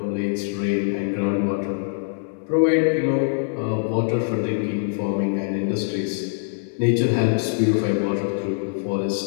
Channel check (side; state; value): right; silent; digital silence